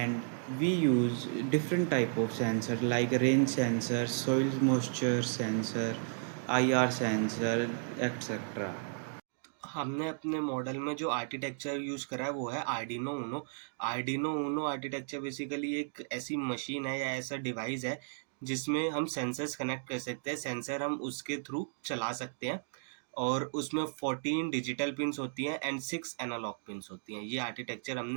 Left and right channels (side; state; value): left; silent; digital silence